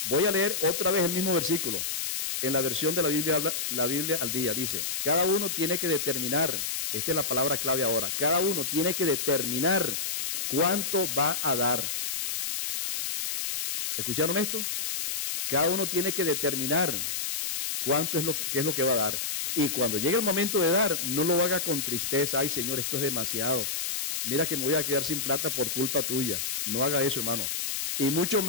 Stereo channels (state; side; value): noise; left; hiss, 2 dB below the sound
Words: Voy a leer otra vez el mismo versículo. En la versión de la Biblia al día, dice: cada uno tiene que determinar, esta es la palabra clave ahora, cada uno tiene que determinar cuánto va a dar. ¿Escucharon esto? Cada uno tiene que determinar qué es lo que va a dar. Y cuando llegue el momento de dar, no lo haga con tristeza. Ay, Señor, esto es demasiado. Mira que me voy a quedar sin plata por culpa tuya. No haga eso, hermano. Y mucho